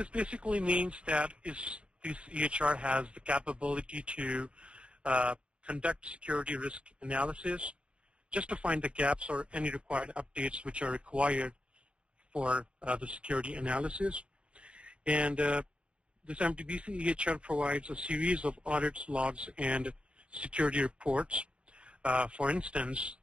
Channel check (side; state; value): left; late; 0.057 ms